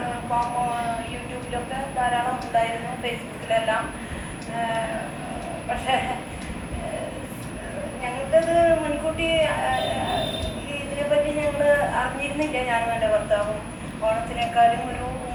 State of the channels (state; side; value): identical; both; correlation 1.00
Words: യൂട്യൂബിലൊക്കെ ധാരാളം ഉണ്ടായിരുന്നു, ഫേസ്ബുക്കിലെല്ലാം. പക്ഷേ ഞങ്ങൾക്കത് മുൻകൂട്ടി ഇതിനെപ്പറ്റി ഞങ്ങൾ അറിഞ്ഞിരുന്നില്ല. ഞാനും എൻ്റെ ഭർത്താവും ഓണത്തിനേക്കാളും ഒരു